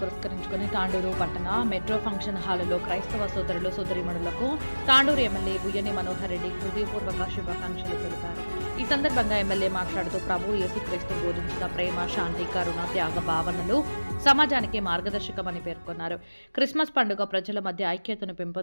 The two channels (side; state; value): both; inverted; correlation -1.00